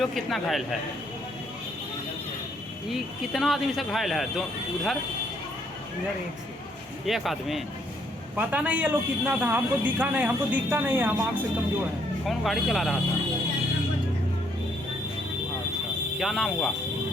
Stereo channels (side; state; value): both; normal; correlation 0.69